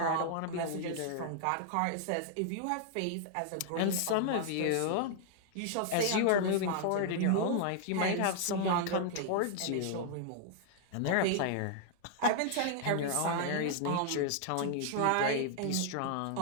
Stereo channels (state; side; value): different; both; correlation 0.00